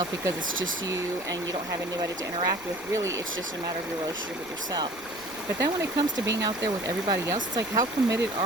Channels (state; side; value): noise; right; rumble, 23 dB below the sound